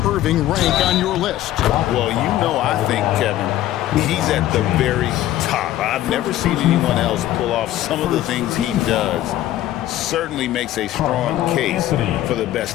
Irving rank on your list? Well, you know, I think, Kevin, he's at the very top. I've never seen anyone else pull off some of the things he does. Certainly makes a strong case for the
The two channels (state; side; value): quieter; right; 13.8 dB